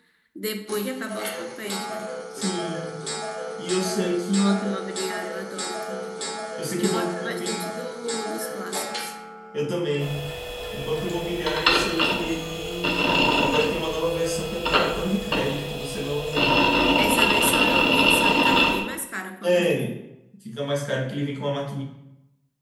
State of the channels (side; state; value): both; identical; correlation 1.00